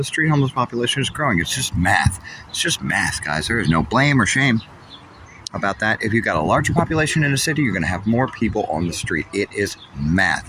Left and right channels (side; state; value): both; identical; correlation 1.00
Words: street homeless population is growing. It's just math. It's just math, guys. There is no blame or shame about that. If you've got a larger population in a city, you're going to have more people on the street. It is